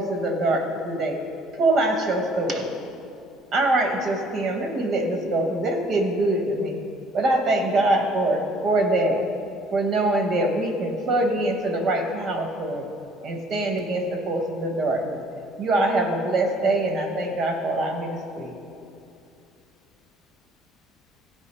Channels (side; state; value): both; normal; correlation 0.58